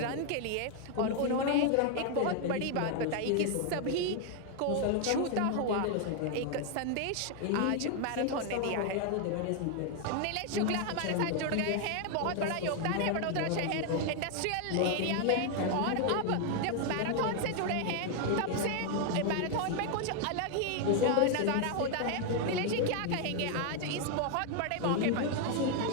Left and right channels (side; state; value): both; different; correlation 0.00